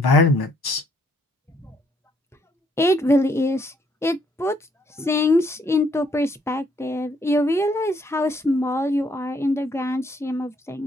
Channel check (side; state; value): both; normal; correlation 0.68